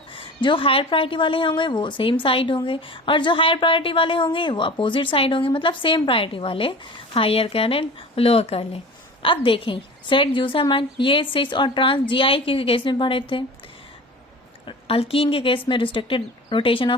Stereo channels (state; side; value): normal; both; correlation 0.37